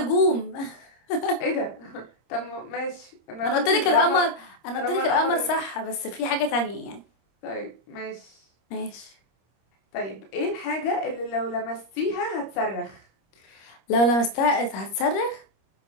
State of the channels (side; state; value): right; late; 25 ms